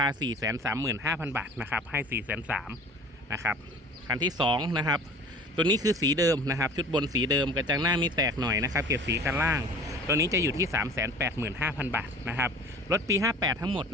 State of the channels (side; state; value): both; normal; correlation 0.44